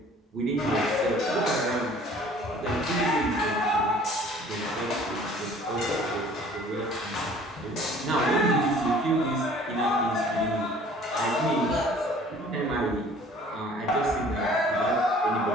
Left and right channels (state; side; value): normal; both; correlation 0.51